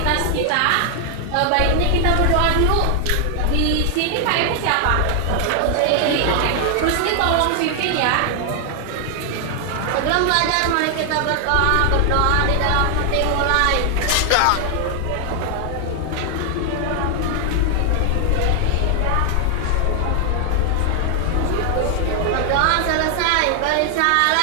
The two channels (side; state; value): both; different; correlation 0.00